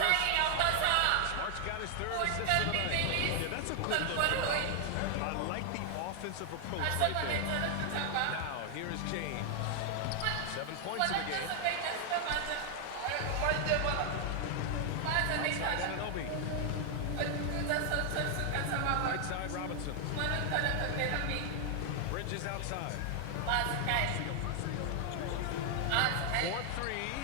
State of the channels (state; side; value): different; both; correlation 0.00